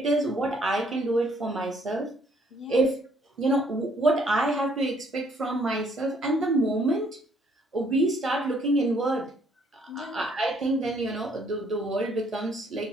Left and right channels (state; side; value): normal; both; correlation 0.65